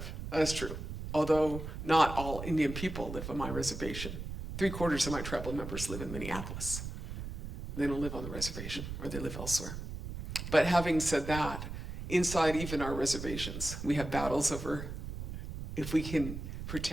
That is true. Although not all Indian people live on my reservation. 3/4 of my tribal members live in Minneapolis. They don't live on the reservation, or they live elsewhere. But having said that, inside even our reservations. We have battles over if we can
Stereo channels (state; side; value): noise; right; rumble, 7 dB below the sound